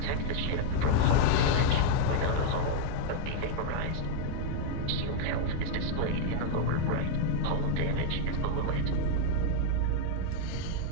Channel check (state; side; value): different; both; correlation 0.00